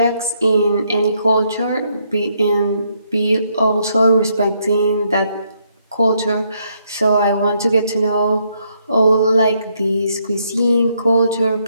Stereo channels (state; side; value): inverted; both; correlation -0.74